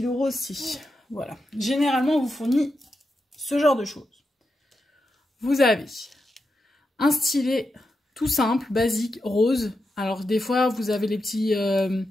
rose si. Voilà. Généralement, on vous fournit ce genre de choses. Vous avez un stylet tout simple, basique, rose. Alors, des fois, vous avez les petits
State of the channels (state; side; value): normal; both; correlation 0.87